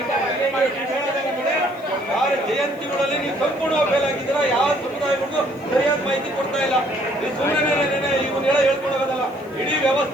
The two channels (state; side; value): noise; right; hiss, 29 dB below the sound